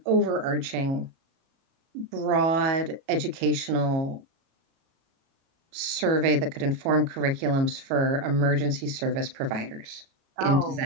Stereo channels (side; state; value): left; late; 37 ms